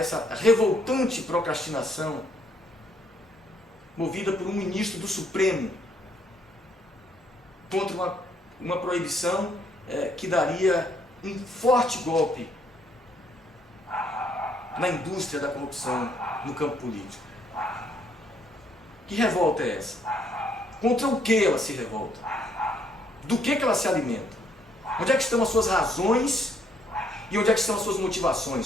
revoltante procrastinação movida por um ministro do Supremo contra uma proibição que daria um forte golpe na indústria da corrupção no campo político. Que revolta é essa? Contra o que ela se revolta? Do que ela se alimenta? Onde é que estão as suas razões e onde é que estão as suas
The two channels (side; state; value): both; normal; correlation 0.69